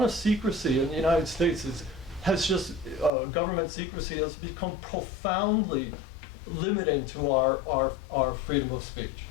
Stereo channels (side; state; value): right; drops out; at 3.1 s